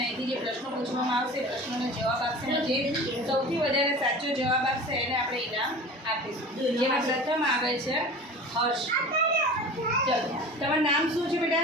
અહીંથી જે પ્રશ્નો પૂછવામાં આવશે પ્રશ્નોનો જવાબ આપશે અને જે સૌથી વધારે સાચો જવાબ આપશે એને આપણે ઇનામ આપીશું. જેમાં પ્રથમ આવે છે હર્ષ. ચલો, તમારું નામ શું છે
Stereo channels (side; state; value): both; normal; correlation 0.37